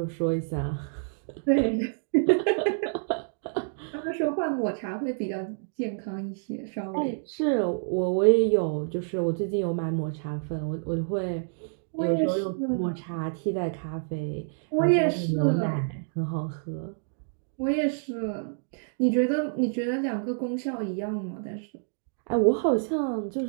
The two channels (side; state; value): left; silent; digital silence